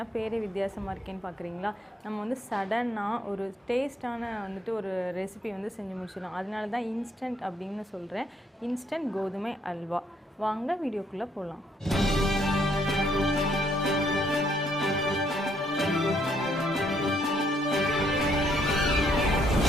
பேரே வித்தியாசமா இருக்கேன்னு பார்க்கறீங்களா? நம்ம வந்து சடனா ஒரு டேஸ்டான ஒரு ரெசிபி செஞ்சு முடிச்சிடலாம். அதனால தான் இன்ஸ்டன்ட் அப்படினு சொல்றேன். இன்ஸ்டன்ட் கோதுமை அல்வா. வாங்க வீடியோக்குள்ள போலாம்.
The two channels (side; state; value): both; normal; correlation 0.70